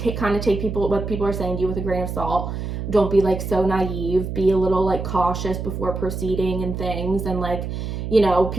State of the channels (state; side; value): noise; right; hum, 5 dB below the sound